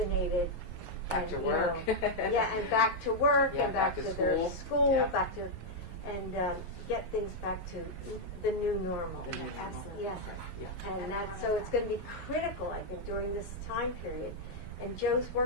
Back to work. And back to work, and back to their school, back to, and get things back to the new normal. Absolutely. Yes. And so it's going to be critical, I think, during this time period. And Joe's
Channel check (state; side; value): late; right; 11 ms